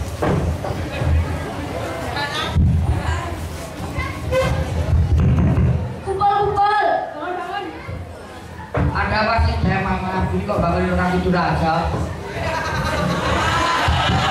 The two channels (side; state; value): both; identical; correlation 1.00